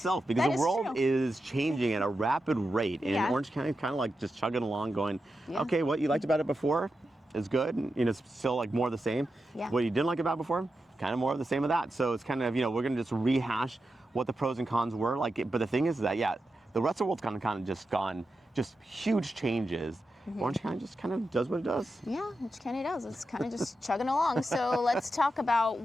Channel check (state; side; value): normal; both; correlation 0.89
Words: because the world is changing at a rapid rate, and Orange County is kind of like just chugging along, going, okay, what you liked about it before is good, and it's still like more of the same. What you didn't like about it before, kind of more of the same of that. So it's kind of, we're going to just rehash what the pros and cons were. But the thing is that, the rest of the world's kind of just gone, just huge changes. Orange County just kind of does what it does. Yeah, Orange County does. It's kind of just chugging along. So let's talk about